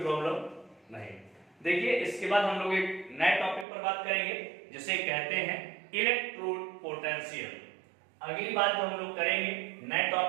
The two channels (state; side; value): drops out; left; at 3.7 s